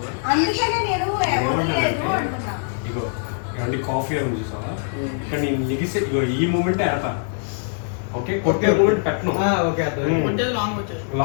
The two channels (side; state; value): right; silent; digital silence